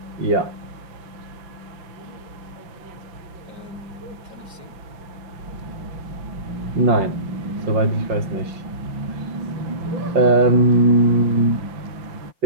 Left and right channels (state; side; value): late; left; 5.8 ms